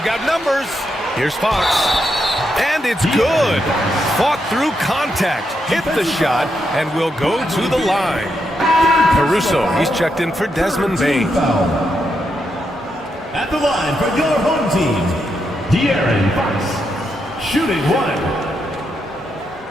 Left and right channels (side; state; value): both; normal; correlation 0.82